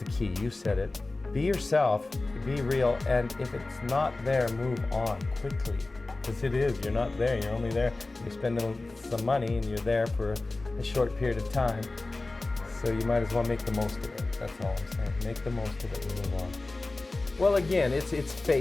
key. You said it. Be yourself, be real, and if it's not there, move on quickly. Because it is, you're not there, you're only there, you're spending some money and you're there for a short period of time. So you might as well make the most of it. That's all I'm saying. Make the most of it and move on. Well, again, it's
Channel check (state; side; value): quieter; right; 3.2 dB